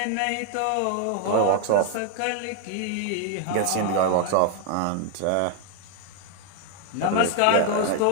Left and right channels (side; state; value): both; different; correlation 0.00